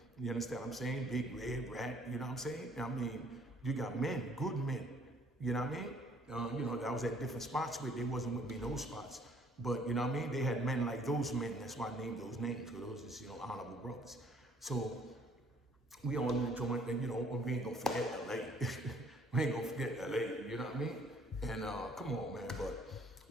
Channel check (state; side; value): normal; both; correlation 0.60